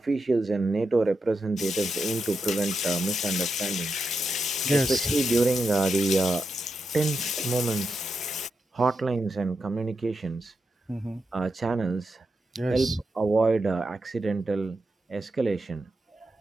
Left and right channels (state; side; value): normal; both; correlation 0.86